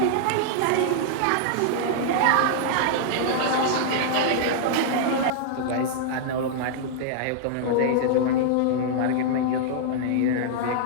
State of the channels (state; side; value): different; both; correlation -0.01